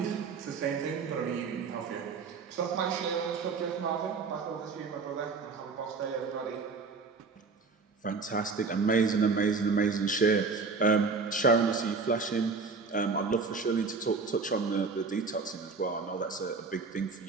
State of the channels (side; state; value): left; quieter; 4.6 dB